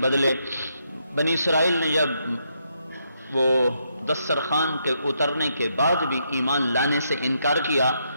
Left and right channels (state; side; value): inverted; both; correlation -0.78